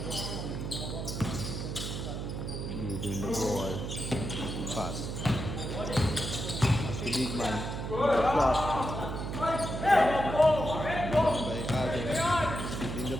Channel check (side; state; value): right; noise; hum, 5 dB below the sound